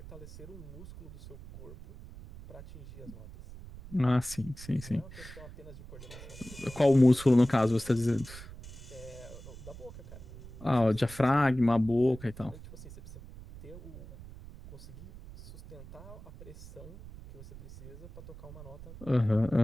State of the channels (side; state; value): right; noise; rumble, 15 dB below the sound